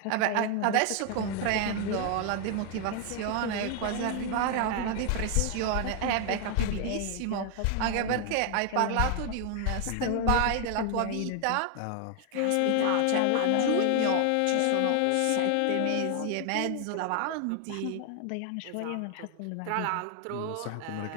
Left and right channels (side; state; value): both; different; correlation 0.00